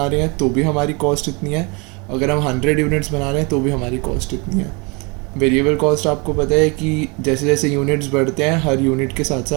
रहे हैं तो भी हमारी कॉस्ट इतनी है, अगर हम 100 यूनिट्स बना रहे हैं तो भी हमारी कॉस्ट इतनी है। वेरिएबल कॉस्ट आपको पता है कि जैसे जैसे यूनिट्स बढ़ते हैं हर यूनिट के साथ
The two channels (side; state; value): left; quieter; 29.7 dB